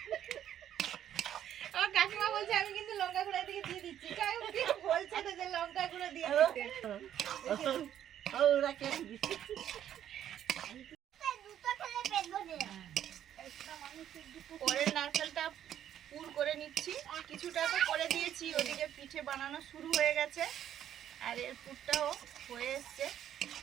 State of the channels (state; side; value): quieter; left; 10.6 dB